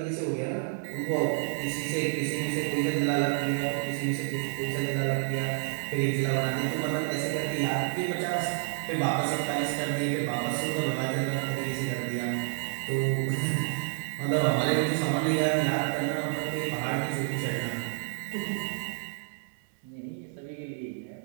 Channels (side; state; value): left; silent; digital silence